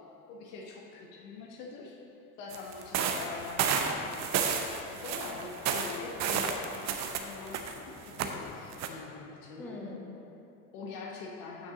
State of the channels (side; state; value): left; quieter; 4.4 dB